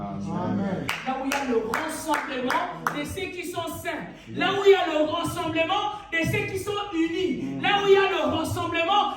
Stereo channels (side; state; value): both; identical; correlation 1.00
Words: où il y a le rassemblement de ceux qui sont saints. Là où il y a le rassemblement de ceux qui sont unis. Là où il y a le